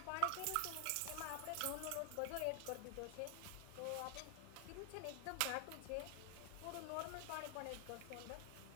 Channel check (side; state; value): both; different; correlation 0.00